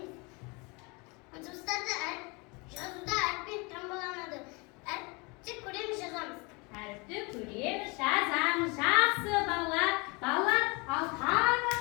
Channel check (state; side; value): quieter; right; 28.4 dB